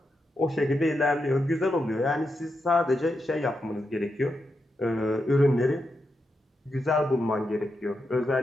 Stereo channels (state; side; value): normal; both; correlation 0.86